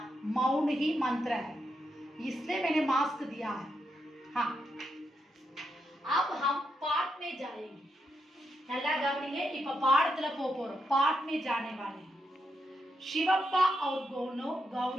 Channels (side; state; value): both; normal; correlation 0.82